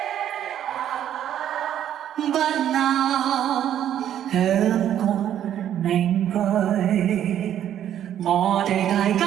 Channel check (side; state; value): left; quieter; 10.6 dB